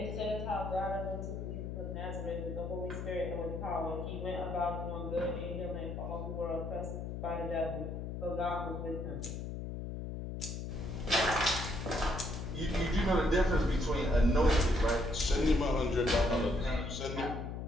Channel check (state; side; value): noise; left; hum, 5 dB below the sound